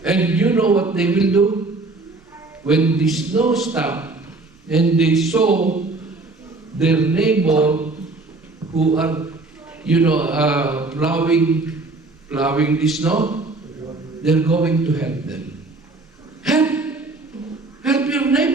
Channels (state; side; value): quieter; left; 3.3 dB